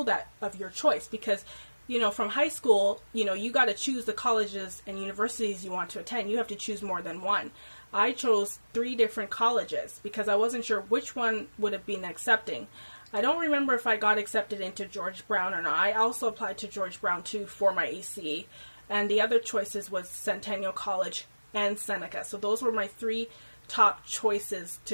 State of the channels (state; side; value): inverted; both; correlation -1.00